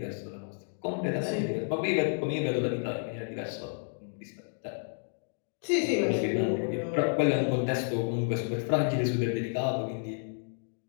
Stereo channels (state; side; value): silent; right; digital silence